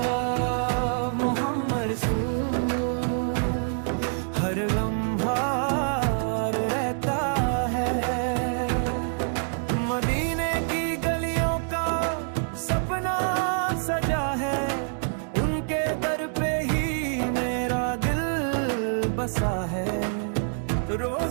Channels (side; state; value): left; silent; digital silence